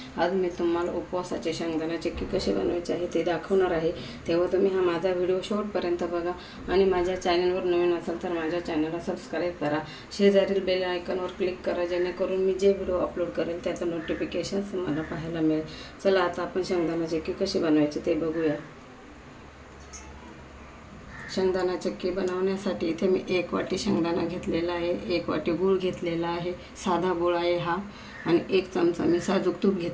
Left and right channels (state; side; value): identical; both; correlation 1.00